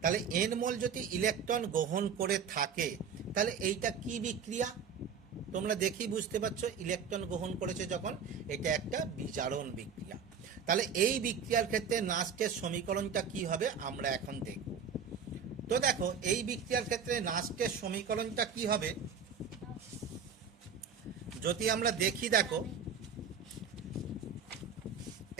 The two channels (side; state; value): left; quieter; 6.5 dB